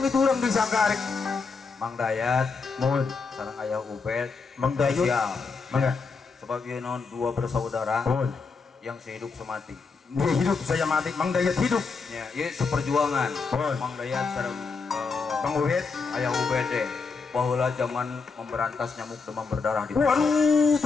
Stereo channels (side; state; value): right; quieter; 4.7 dB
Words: orang disangka rek. Mang Dayat, Mohon. sareng ayah Ubed, Mang Dayut. sial. Mangga. Sebagai non dua bersaudara Mohon. yang sehidup semati. Dia hidup, saya mati. Mang Dayat hidup. Ya, ini seperjuangan. Mohon. Mang Dayat sareng Mang Uhid. ayah Ubed deh. Bahwa zaman memberantas nyamuk demam berdarah di Waduh,